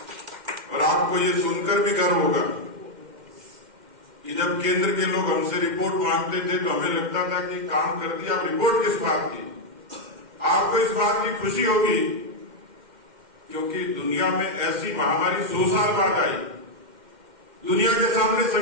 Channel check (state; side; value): late; left; 2.1 ms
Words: और आपको ये सुनकर भी गर्व होगा कि जब केंद्र के लोग हमसे रिपोर्ट मांगते थे तो हमें लगता था कि काम कर दिया, अब रिपोर्ट किस बात की। आपको इस बात की खुशी होगी क्योंकि दुनिया में ऐसी महामारी 100 साल बाद आई, दुनिया के सामने